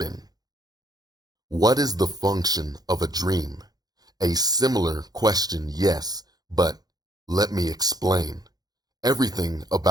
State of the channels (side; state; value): left; late; 0.19 ms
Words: What is the function of a dream? A similar question, yes, but let me explain. Everything